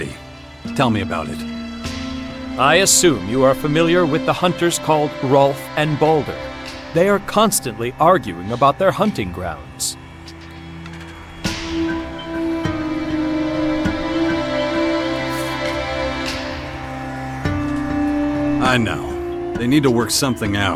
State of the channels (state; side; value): identical; both; correlation 1.00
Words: Tell me about it. I assume you are familiar with the hunters called Rolf and Balder. They are constantly arguing about their hunting grounds. I know. They need to work something